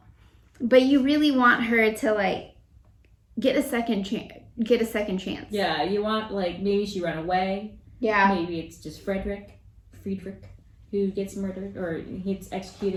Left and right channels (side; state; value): both; identical; correlation 1.00